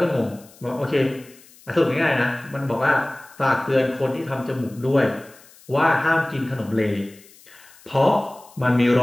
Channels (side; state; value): left; noise; hiss, 25 dB below the sound